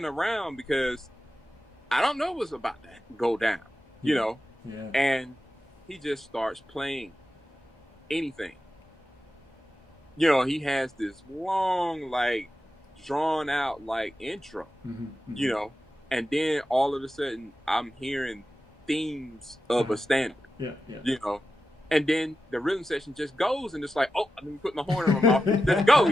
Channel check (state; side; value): normal; both; correlation 0.91